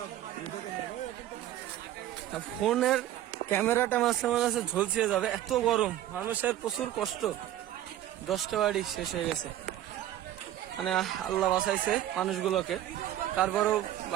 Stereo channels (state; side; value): quieter; left; 12.8 dB